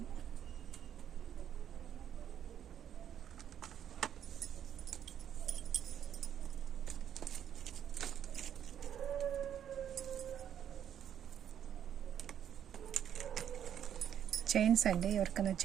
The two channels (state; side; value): quieter; left; 9.5 dB